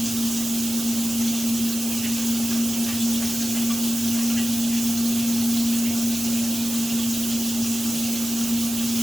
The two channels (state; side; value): noise; right; hiss, 5 dB below the sound